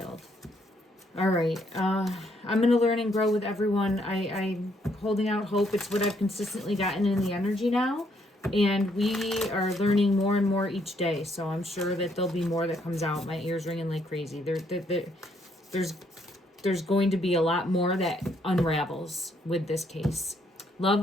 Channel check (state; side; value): normal; both; correlation 0.71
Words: All right. I'm going to learn and grow with everyone. I'm holding out hope. It's what I've consistently gotten in the energy now. And we are learning more and more each day. So I'm sure that there'll be more that comes out. My ears ringing like crazy. There's going to be a lot more that unravels with this case. Love